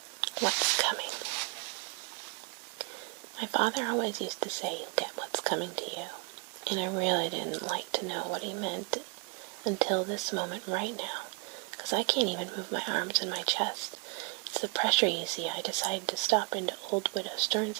What's coming? My father always used to say, you'll get what's coming to you. And I really didn't like to know what he meant until this moment right now, because I can't even move my arms and my chest. It's the pressure, you see. I decided to stop into old Widow Stern's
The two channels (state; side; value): quieter; left; 28.2 dB